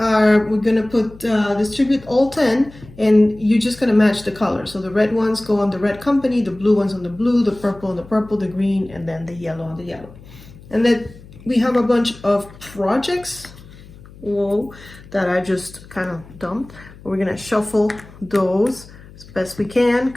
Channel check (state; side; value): noise; left; hum, 20 dB below the sound